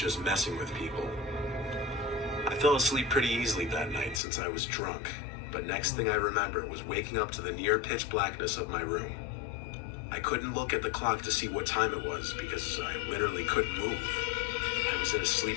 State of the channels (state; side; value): drops out; right; at 4.2 s